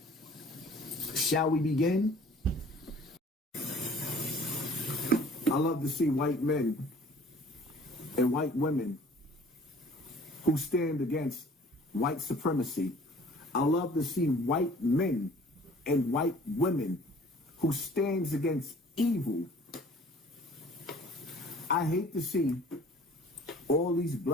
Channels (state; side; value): normal; both; correlation 0.51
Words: Shall we begin? I love to see white men and white women who stand against white supremacy. I love to see white men and white women who stands against evil. I hate to see all these